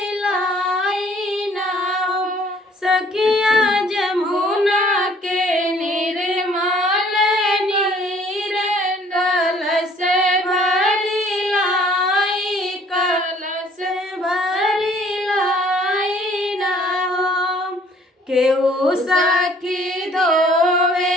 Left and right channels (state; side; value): normal; both; correlation 0.58